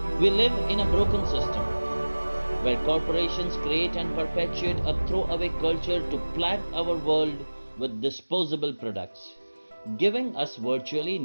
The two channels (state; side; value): inverted; both; correlation -1.00